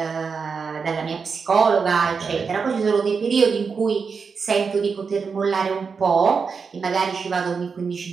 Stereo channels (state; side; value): quieter; left; 5.4 dB